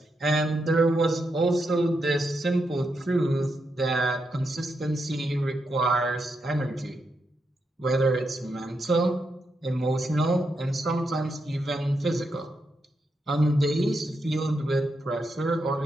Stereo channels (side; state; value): both; normal; correlation 0.83